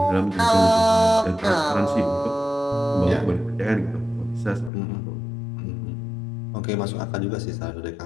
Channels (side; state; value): right; drops out; at 4.7 s